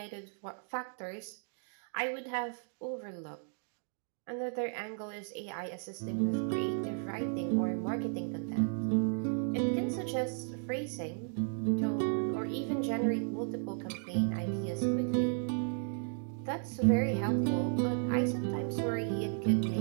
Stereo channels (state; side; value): silent; left; 55 dB below the other